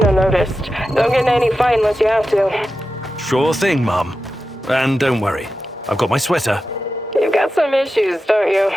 unnoticed. Don't get in any fight unless you have to. Sure thing, Mum. And don't worry, I've got my sweater. You've got some issues, don't you?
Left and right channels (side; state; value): both; normal; correlation 0.91